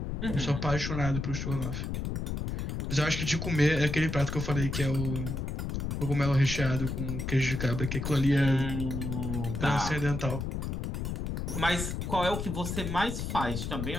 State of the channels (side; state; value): left; noise; rumble, 3 dB below the sound